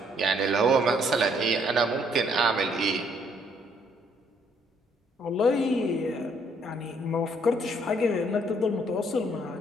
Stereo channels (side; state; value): both; normal; correlation 0.67